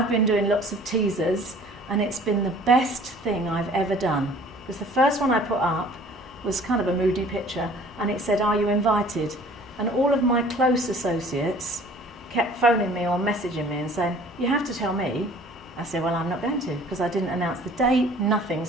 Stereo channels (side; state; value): both; normal; correlation 0.51